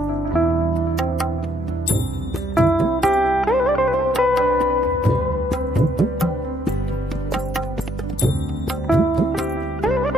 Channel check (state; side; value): normal; both; correlation 0.70